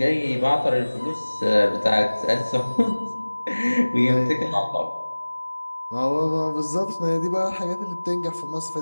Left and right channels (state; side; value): inverted; both; correlation -1.00